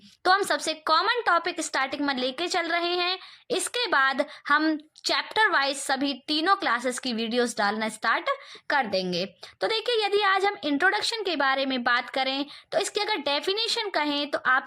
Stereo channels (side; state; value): both; identical; correlation 1.00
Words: तो हम सबसे कॉमन टॉपिक स्टार्टिंग में लेके चल रहे हैं। इसके बाद हम चैप्टर वाइज सभी तीनों क्लासेस की वीडियोस डालना स्टार्ट कर देंगे। तो देखिए, यदि आज हम इंट्रोडक्शन के बारे में बात करें तो इसकी अगर डेफिनेशन कहें तो